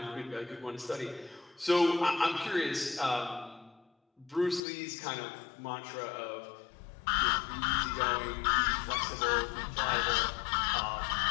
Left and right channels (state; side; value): drops out; right; at 4.6 s